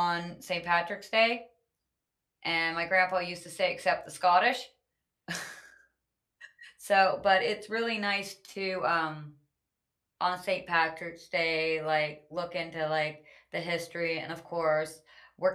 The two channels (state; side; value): identical; both; correlation 1.00